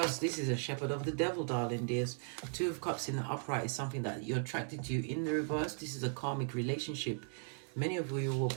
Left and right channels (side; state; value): left; silent; 53 dB below the other